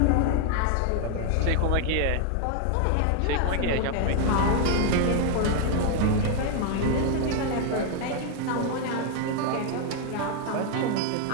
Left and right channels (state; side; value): different; both; correlation 0.00